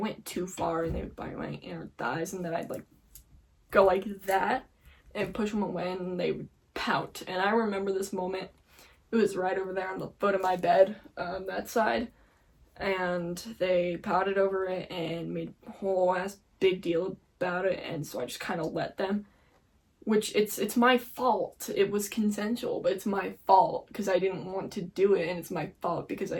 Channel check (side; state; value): both; identical; correlation 1.00